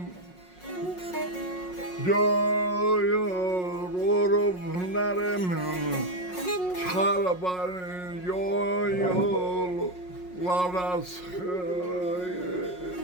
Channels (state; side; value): late; right; 5.5 ms